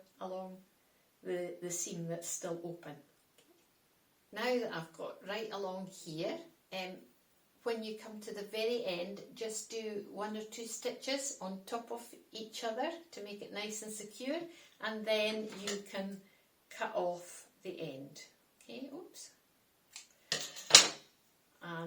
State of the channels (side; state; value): both; identical; correlation 1.00